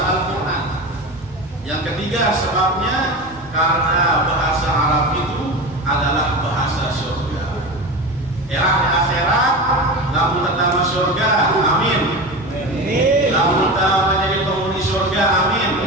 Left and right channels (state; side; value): normal; both; correlation 0.27